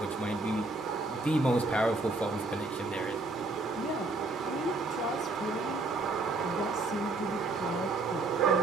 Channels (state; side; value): quieter; left; 3.2 dB